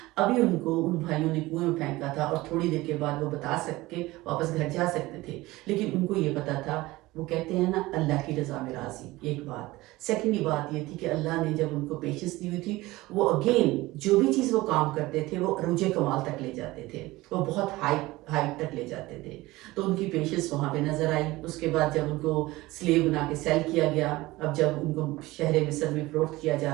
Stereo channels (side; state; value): left; quieter; 19.4 dB